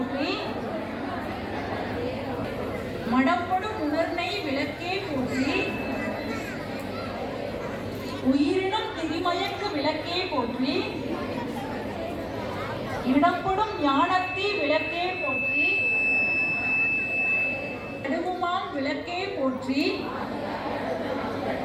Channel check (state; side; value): identical; both; correlation 1.00